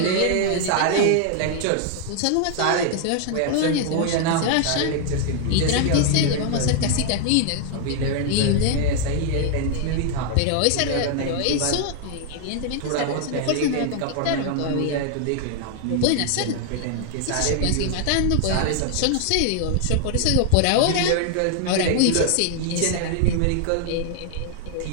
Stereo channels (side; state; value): both; different; correlation 0.00